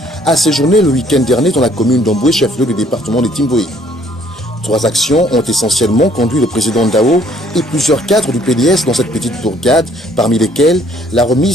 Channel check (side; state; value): both; normal; correlation 0.62